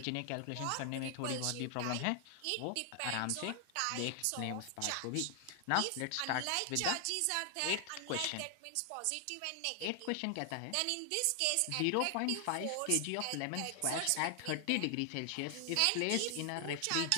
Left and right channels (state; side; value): different; both; correlation 0.00